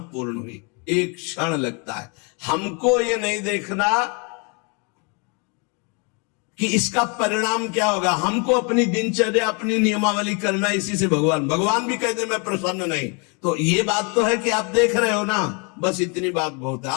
हुई। एक क्षण लगता है, हमको ये नहीं देखना कि इसका परिणाम क्या होगा, हमको अपनी दिनचर्या अपनी नियमावली करना, इसी से भगवान भी कहते मैं प्रसन्न नहीं। तो ये बात तो है कि आप देख रहे हो ना, बस इतनी बात बहुत है,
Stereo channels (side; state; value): right; quieter; 33.9 dB